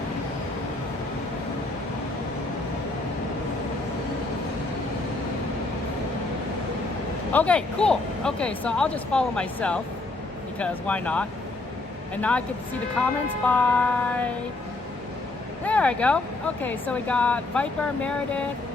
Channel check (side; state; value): right; quieter; 3.1 dB